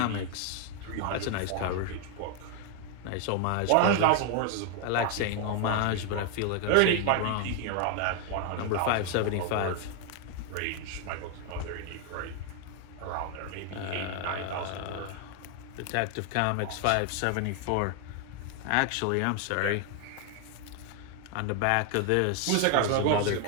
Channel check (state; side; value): different; both; correlation 0.00